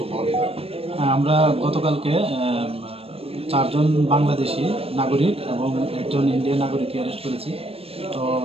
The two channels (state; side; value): late; left; 0.28 ms